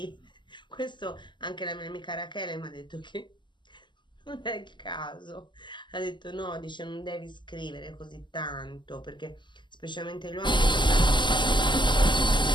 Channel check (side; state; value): right; late; 0.22 ms